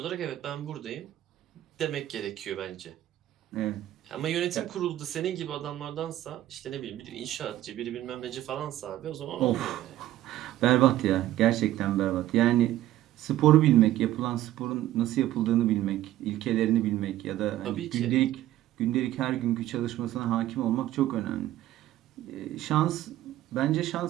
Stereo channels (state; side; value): quieter; left; 13.9 dB